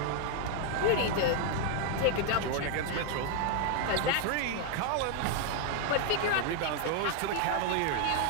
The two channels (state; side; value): different; both; correlation 0.00